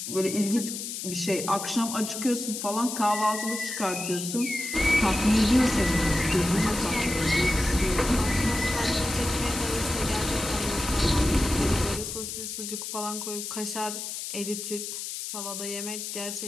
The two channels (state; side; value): noise; left; hiss, 6 dB below the sound